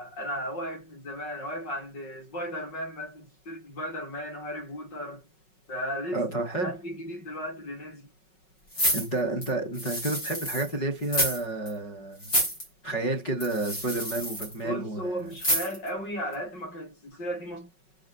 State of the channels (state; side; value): late; right; 5.4 ms